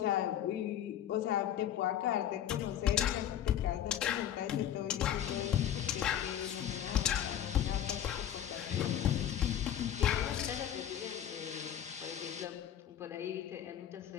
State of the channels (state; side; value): quieter; right; 10.5 dB